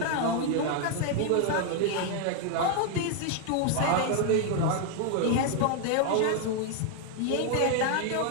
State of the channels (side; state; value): both; different; correlation 0.00